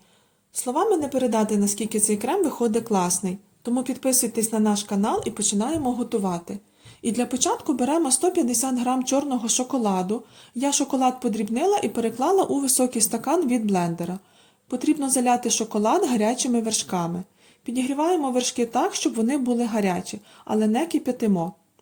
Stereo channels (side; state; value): both; identical; correlation 1.00